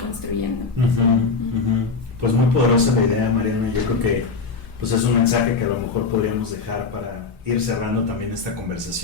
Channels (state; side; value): quieter; right; 4.6 dB